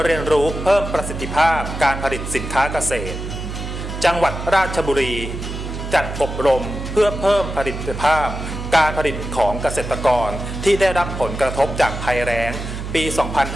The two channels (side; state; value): right; noise; hum, 7 dB below the sound